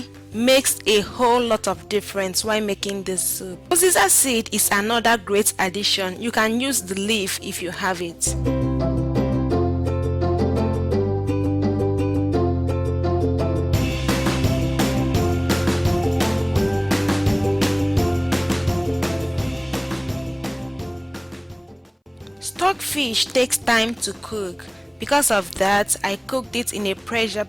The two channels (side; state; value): both; identical; correlation 1.00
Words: makes a whole lot of difference while making this soup. Uziza seed is another great addition. You can use the leaf if you have it. Stockfish takes time to cook. Because of that, I cooked it in a pressure